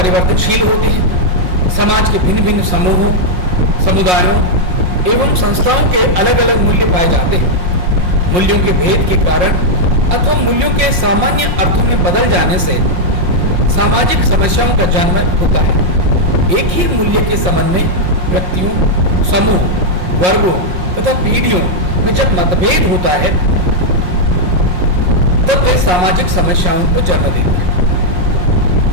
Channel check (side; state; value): left; late; 5.6 ms